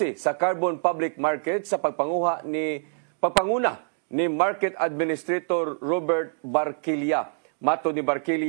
sa carbon public market sa pagpanguna ni Market Administrator Robert Barquilla. Mato ni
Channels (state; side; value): silent; left; digital silence